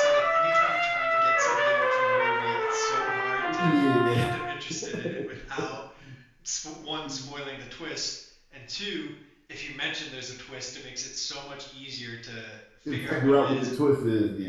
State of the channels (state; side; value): identical; both; correlation 1.00